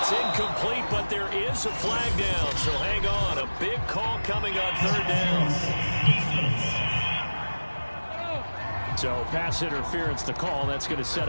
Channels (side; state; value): both; inverted; correlation -1.00